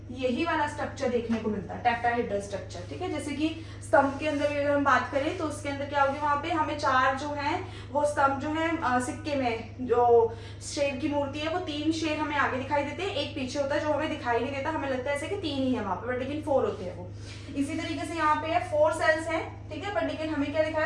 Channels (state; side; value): identical; both; correlation 1.00